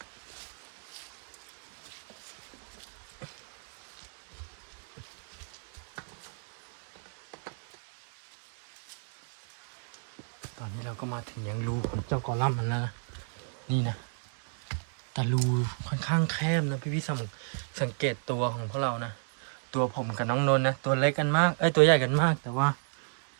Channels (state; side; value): silent; left; 57 dB below the other